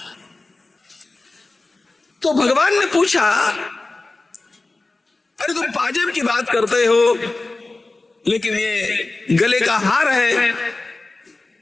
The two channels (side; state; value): right; quieter; 3.2 dB